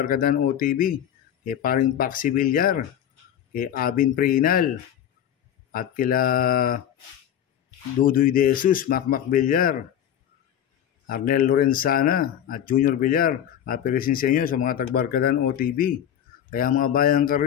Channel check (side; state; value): right; quieter; 10.0 dB